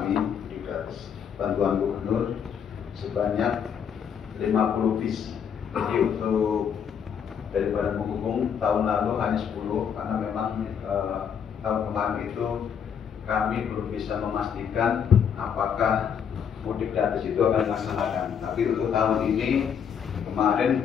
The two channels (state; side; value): quieter; right; 7.7 dB